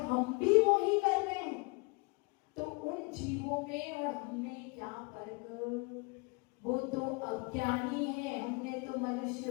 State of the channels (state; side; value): quieter; right; 29.8 dB